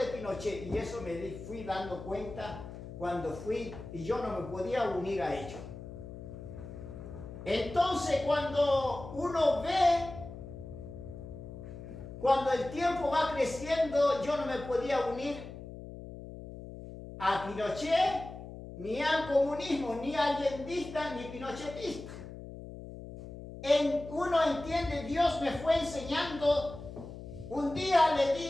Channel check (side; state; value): left; noise; hum, 12 dB below the sound